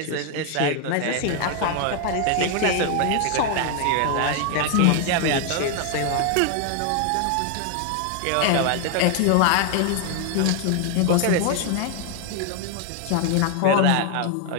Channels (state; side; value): different; both; correlation 0.00